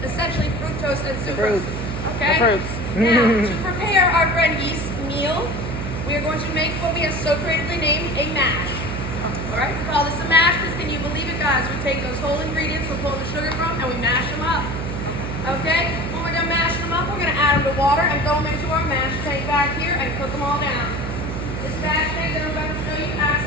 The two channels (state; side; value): noise; right; hum, 5 dB below the sound